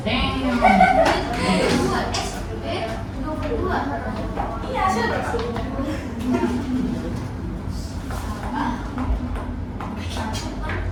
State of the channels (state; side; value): identical; both; correlation 1.00